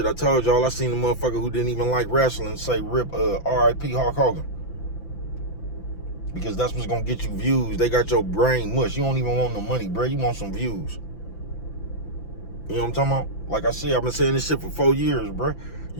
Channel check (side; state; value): right; late; 5.9 ms